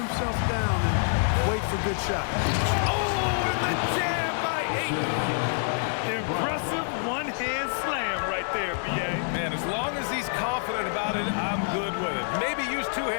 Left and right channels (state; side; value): silent; right; digital silence